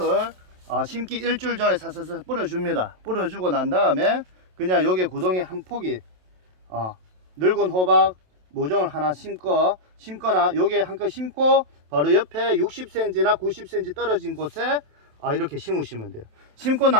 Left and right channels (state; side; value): late; left; 27 ms